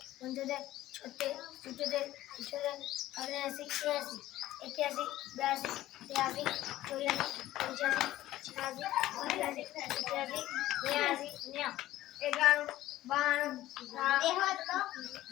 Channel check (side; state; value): right; quieter; 15.0 dB